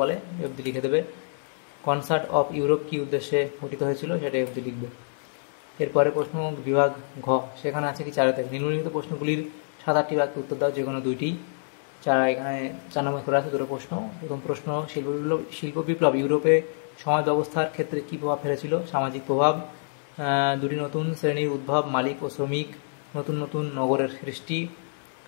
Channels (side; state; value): right; silent; 58 dB below the other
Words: অবধি লিখে দেবে। কনসার্ট অফ ইউরোপ কী উদ্দেশ্যে গঠিত হয়েছিল, সেটাই অবধি লিখবে। এরপরে প্রশ্ন বিভাগ ঘ, সেখানে আছে কি 4 থেকে নিম্নলিখিত প্রশ্নগুলির 7-8টি বাক্যে উত্তর দাও, যে কোনো 2টি। যারা এখানে 4 নম্বর করে আছে দুটো প্রশ্ন। প্রথম প্রশ্ন, শিল্প বিপ্লব ইউরোপে সমাজ ব্যবস্থার ক্ষেত্রে কী প্রভাব ফেলেছিল? সামাজিক প্রভাব, দুটি নতুন শ্রেণীর উদ্ভব, মালিক ও শ্রমিক, নতুন নতুন নগরের সৃষ্টি,